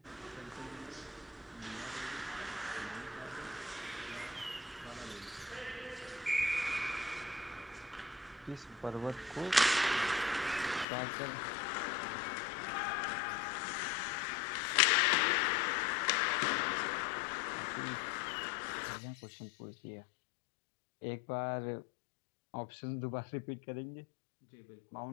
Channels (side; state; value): right; drops out; at 10.9 s